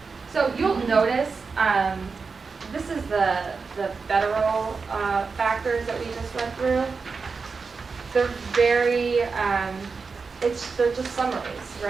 So you'll notice, this is the federal factors that we just went through. They're very, they're just summaries,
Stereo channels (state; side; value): quieter; left; 4.8 dB